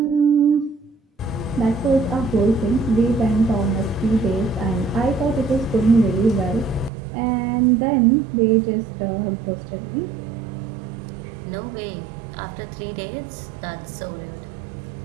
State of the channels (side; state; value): left; drops out; at 6.9 s